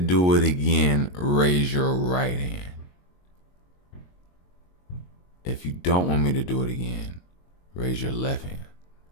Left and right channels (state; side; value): late; right; 22 ms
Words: it again, raise your right hand. If you don't want me to do it again, raise your left hand.